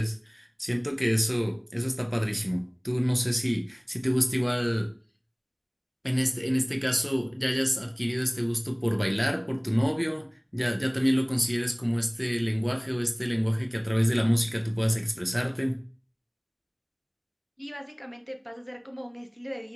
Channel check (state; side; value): identical; both; correlation 1.00